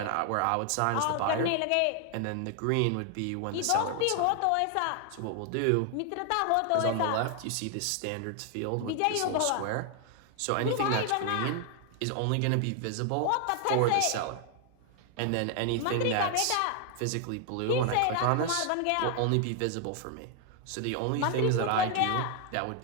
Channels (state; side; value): different; both; correlation 0.00